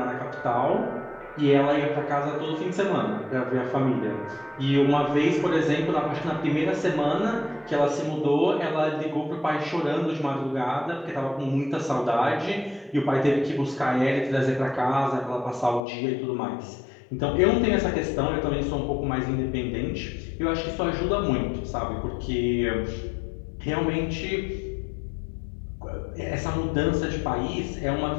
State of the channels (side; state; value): right; drops out; at 15.8 s